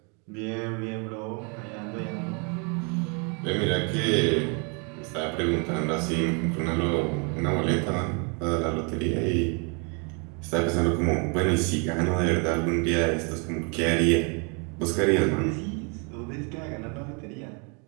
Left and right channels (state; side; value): quieter; left; 35.3 dB